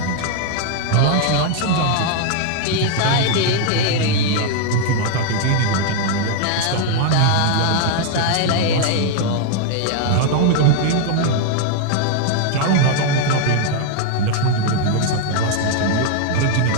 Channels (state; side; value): different; both; correlation 0.00